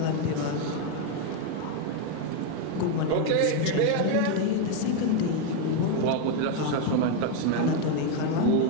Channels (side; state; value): both; different; correlation 0.01